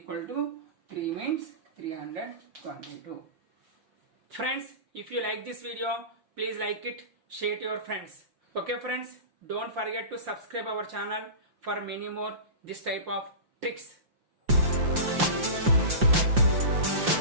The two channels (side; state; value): left; late; 5.7 ms